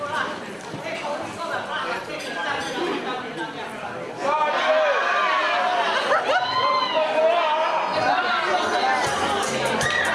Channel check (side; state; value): both; identical; correlation 1.00